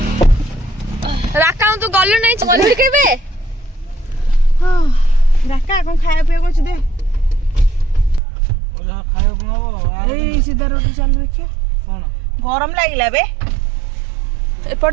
राका तू गलु नहीं गलु केबे हां राका कोन खाया पिया को दे ओला खाया बनाबो ए सीधा रोड चल देखिया कोन गरम लागिला बे एपट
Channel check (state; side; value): drops out; left; at 8.2 s